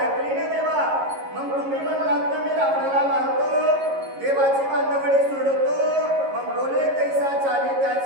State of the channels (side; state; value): left; late; 11 ms